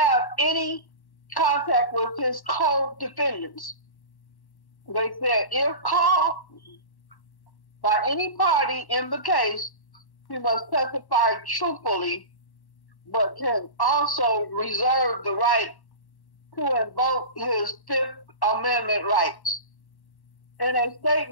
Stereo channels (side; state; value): right; late; 1.1 ms